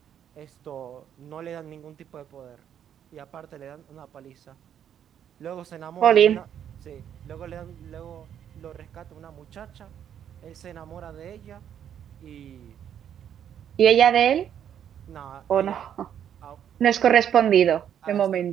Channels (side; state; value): left; quieter; 9.4 dB